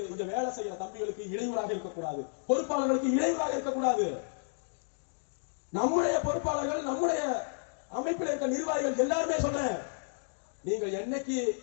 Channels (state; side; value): silent; right; digital silence